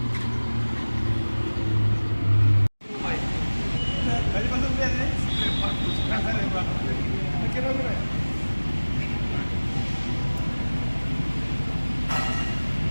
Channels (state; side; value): inverted; both; correlation -1.00